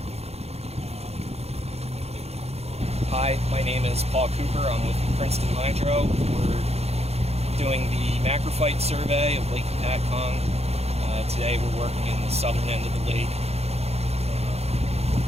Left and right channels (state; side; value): late; left; 0.30 ms